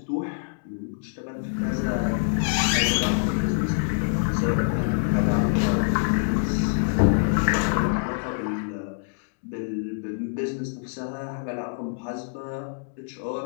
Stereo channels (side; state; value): right; silent; digital silence